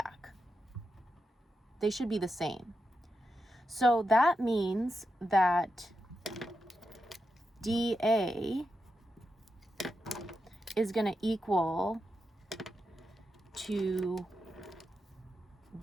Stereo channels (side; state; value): both; normal; correlation 0.87